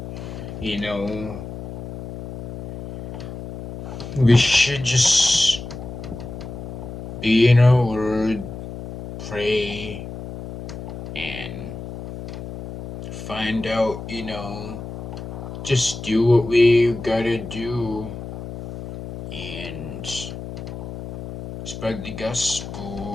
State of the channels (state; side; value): noise; left; hum, 9 dB below the sound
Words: you know, we should just be in our word, pray, and find out, just do what we gotta do, and spread the